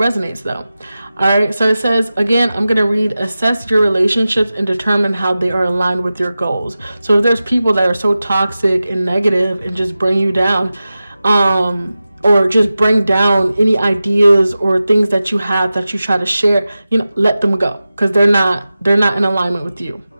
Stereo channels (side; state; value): both; inverted; correlation -0.95